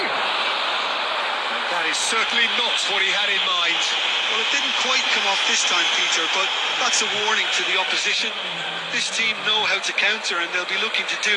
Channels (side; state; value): both; identical; correlation 1.00